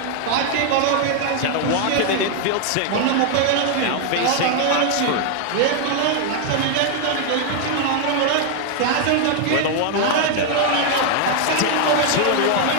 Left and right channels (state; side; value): different; both; correlation 0.00